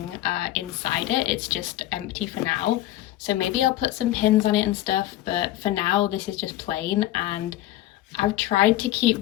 inside it. It's just empty for now. So maybe I'll put some pins on it and stuff, but for now this is just plain. And I've tried to keep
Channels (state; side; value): quieter; right; 14.7 dB